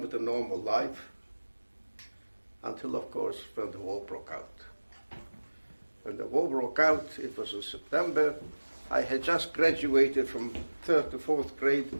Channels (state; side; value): inverted; both; correlation -1.00